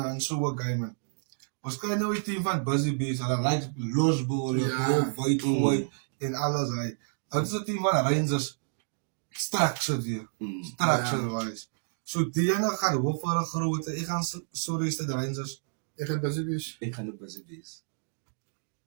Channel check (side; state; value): left; silent; digital silence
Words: in so 'n game man. Ons kry nou die team van Busy Bees, hulle like losbol, white gooi en alles hy. Dit is 'n team van Rangers structured weer. Structured wise. So die ene gaan hoof vir 'n groot. Ek gaan sorry is dit Rangers. Ik ga best eens. Ek gaan ook Busy Bees.